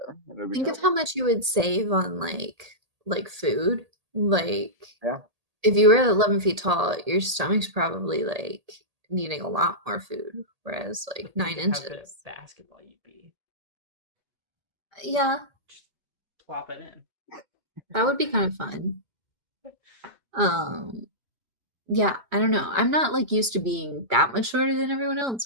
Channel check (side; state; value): left; late; 1.8 ms